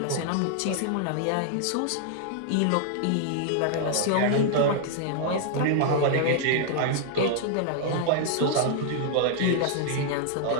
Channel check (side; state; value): both; different; correlation -0.01